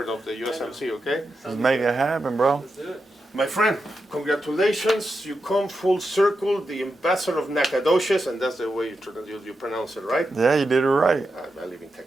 of the USMC, okay? Let's make it happen, bro. Let's do it. My friend, congratulations. You come full circle, the ambassador of Nacogdoches, and that's the way you pronounce it, right? Yeah, you did it right. I live in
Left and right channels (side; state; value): both; normal; correlation 0.88